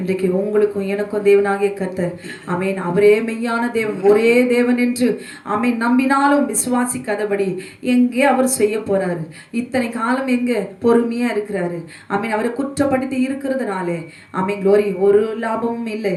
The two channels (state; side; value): identical; both; correlation 1.00